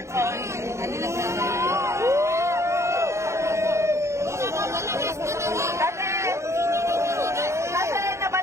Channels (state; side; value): late; left; 0.14 ms